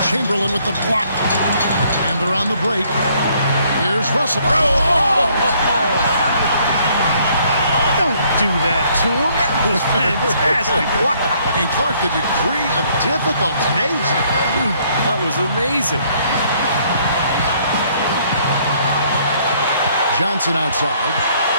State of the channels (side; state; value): both; inverted; correlation -0.65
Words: Chamberlain with the block. And they're on the break. Here's Russell. Don't do that to him. That was fantastic. Wow. And Clark, the degree of difficulty. Amazing. That was amazing. Johnson outside.